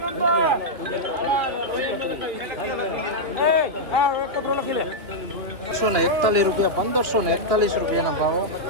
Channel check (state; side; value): late; left; 3.0 ms